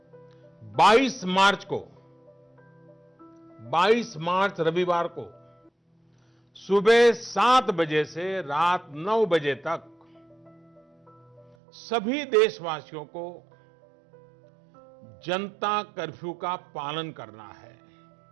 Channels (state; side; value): drops out; left; at 11.6 s